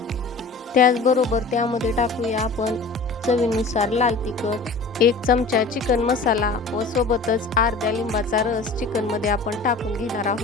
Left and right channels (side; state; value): right; quieter; 3.9 dB